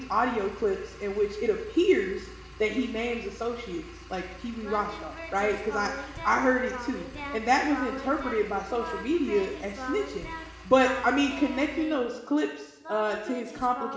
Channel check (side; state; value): both; identical; correlation 1.00